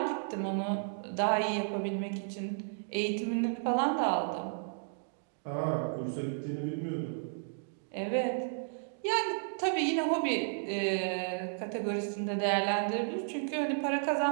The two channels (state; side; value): silent; left; digital silence